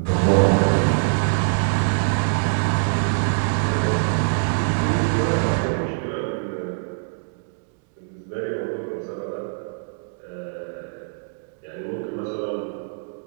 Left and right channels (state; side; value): silent; left; digital silence